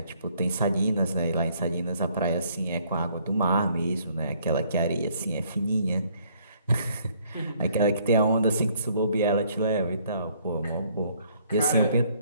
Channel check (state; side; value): inverted; both; correlation -0.64